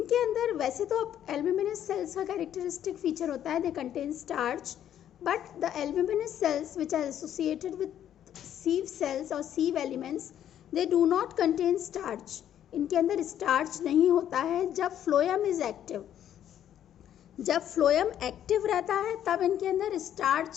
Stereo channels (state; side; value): quieter; right; 10.5 dB